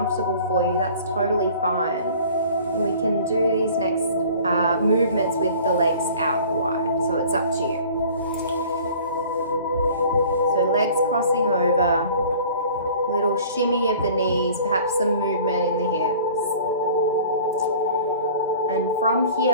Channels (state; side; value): inverted; both; correlation -0.47